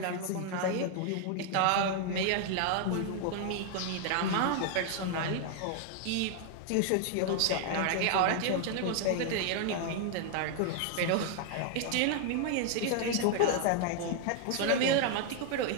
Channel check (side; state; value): both; different; correlation 0.00